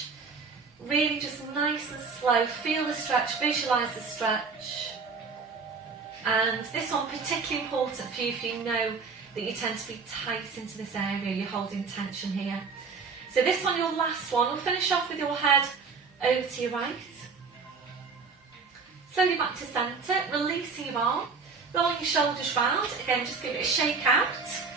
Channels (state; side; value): quieter; left; 4.9 dB